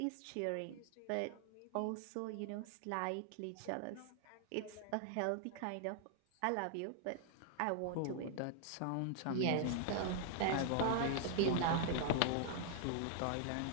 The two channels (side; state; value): both; different; correlation 0.00